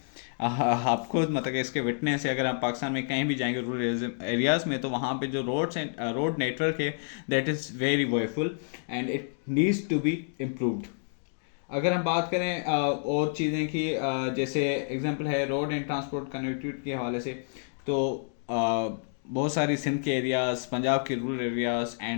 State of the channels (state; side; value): silent; right; digital silence